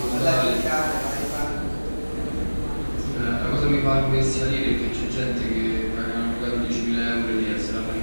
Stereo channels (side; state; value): both; inverted; correlation -1.00